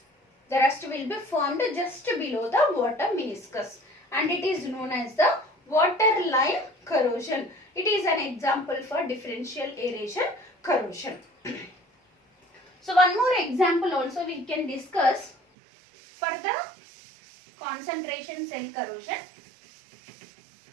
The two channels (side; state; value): left; drops out; at 15.4 s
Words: the rust will be formed just below the water meniscus, and it is known as the waterline corrosion. It is an example for differential aeration corrosion. So one more example also we can discuss for the concentration cell corrosion.